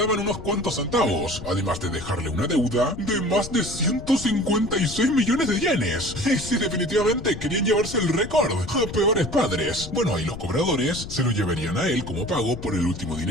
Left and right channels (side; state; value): left; noise; rumble, 11 dB below the sound